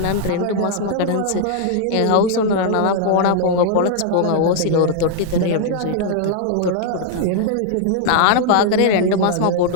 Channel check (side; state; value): both; different; correlation -0.01